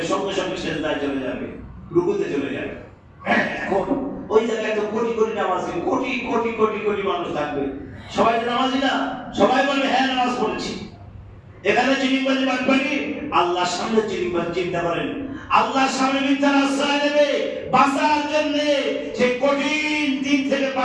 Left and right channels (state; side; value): identical; both; correlation 1.00